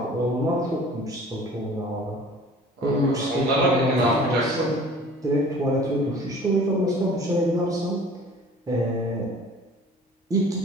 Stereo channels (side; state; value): both; normal; correlation 0.47